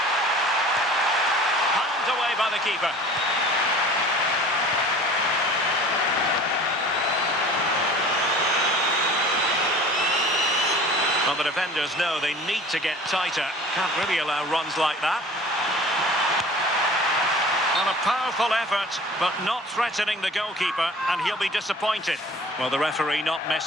Palmed away by the keeper. Well, the defenders know they need to get tighter. Can't really allow runs like that. On a powerful effort, but not threatening the goalkeeper, and he'll be disappointed. Well, the referee not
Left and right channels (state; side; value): normal; both; correlation 0.44